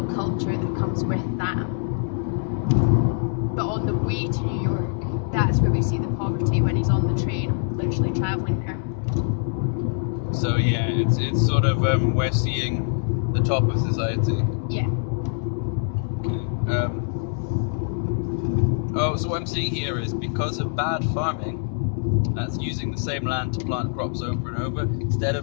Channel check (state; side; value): silent; right; 63 dB below the other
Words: culture that comes with that. But on the way to New York, that's where we see the poverty when he's on the train, literally travelling there. So yeah, it's sort of we're seeing the top of society. Yeah. Okay. So what I'm seeing here is because of bad farming, that's using the same land to plant crops over and over instead